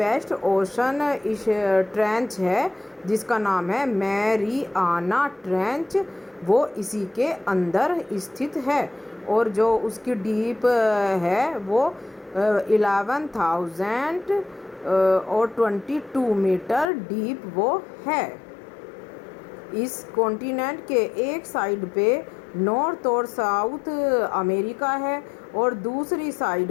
ओशन इस ट्रेंच है जिसका नाम है मैरियाना ट्रेंच, वो इसी के अंदर स्थित है और जो उसकी डीप है वो 11,000 और 22 मीटर डीप वो है। इस कॉन्टिनेंट के एक साइड पे नॉर्थ और साउथ अमेरिका है और दूसरी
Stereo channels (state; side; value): drops out; right; at 16.9 s